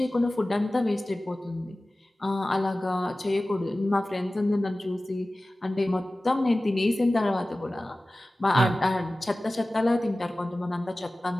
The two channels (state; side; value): normal; both; correlation 0.97